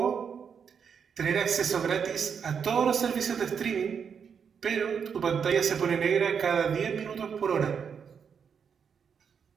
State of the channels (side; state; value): left; quieter; 6.9 dB